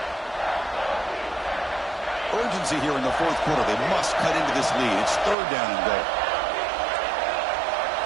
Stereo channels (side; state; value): left; drops out; at 5.4 s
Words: Urgency here in the fourth quarter. They must cut into this lead. It's 3rd down and goal.